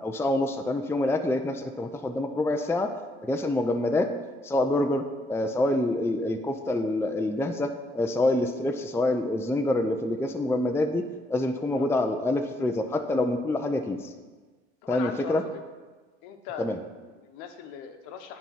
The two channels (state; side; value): normal; both; correlation 0.76